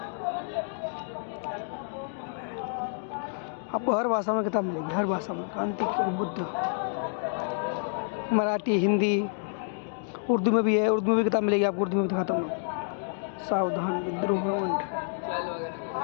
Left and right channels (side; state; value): right; silent; digital silence